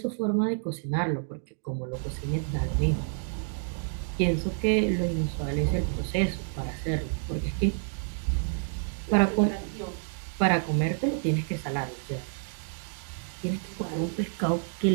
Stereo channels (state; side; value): silent; left; digital silence